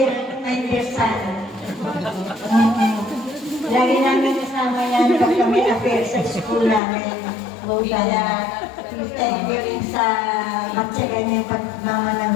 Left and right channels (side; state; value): right; drops out; at 6.8 s